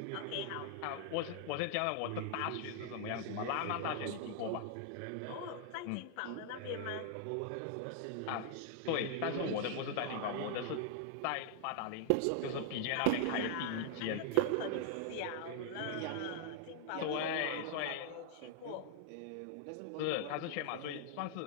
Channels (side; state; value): both; different; correlation 0.00